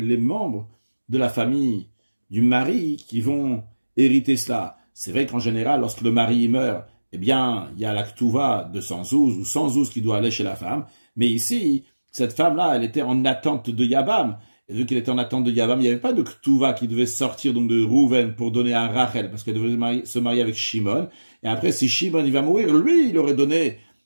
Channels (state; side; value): inverted; both; correlation -1.00